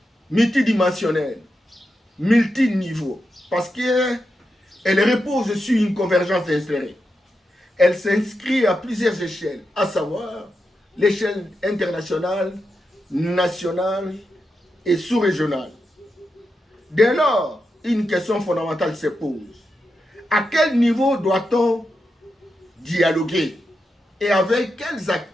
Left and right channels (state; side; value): normal; both; correlation 0.87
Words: multidimensionnelle, multiniveau, parce qu'elle repose sur une convergence insérée. Elle s'inscrit à plusieurs échelles, à savoir l'échelle internationale, nationale et sous-régionale. Dès lors, une question fondamentale se pose. À quel niveau doit-on dialoguer et avec quels